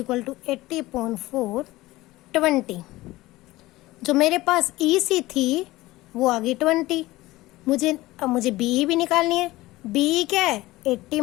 to 80/4 20। जो मेरे पास EC थी वो आ गई 20। अब मुझे BE भी निकालनी है। BE क्या है, 80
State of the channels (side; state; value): right; quieter; 18.5 dB